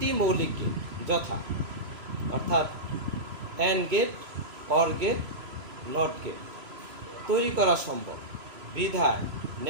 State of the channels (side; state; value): left; late; 3.0 ms